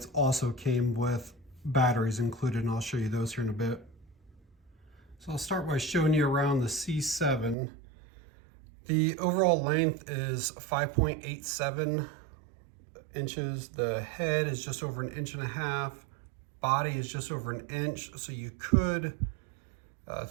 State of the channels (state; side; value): drops out; left; at 7.6 s